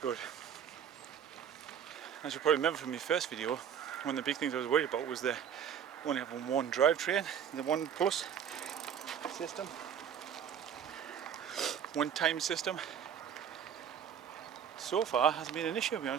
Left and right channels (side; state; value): left; quieter; 8.3 dB